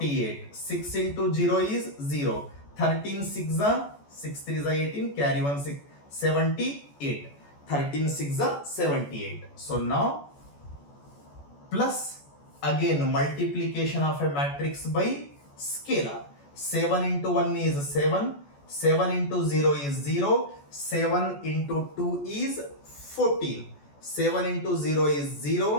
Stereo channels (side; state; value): right; late; 14 ms